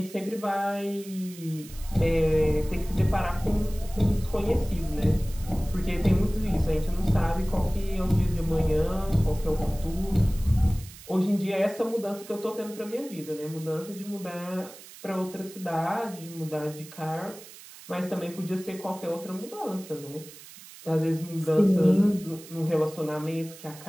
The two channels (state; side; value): noise; right; hiss, 18 dB below the sound